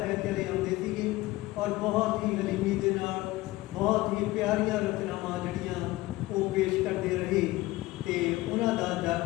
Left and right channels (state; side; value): quieter; right; 18.6 dB